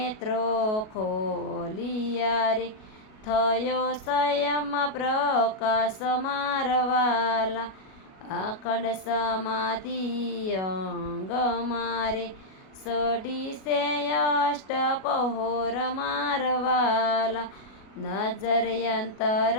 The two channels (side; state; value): right; late; 37 ms